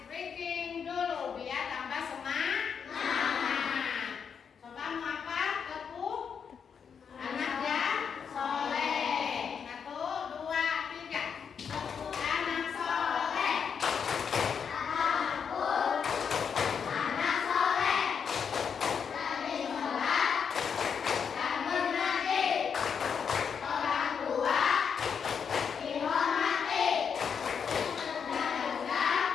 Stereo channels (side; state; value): right; quieter; 6.8 dB